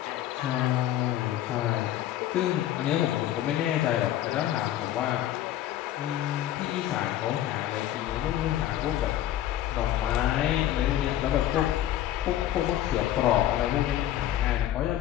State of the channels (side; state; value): right; quieter; 12.6 dB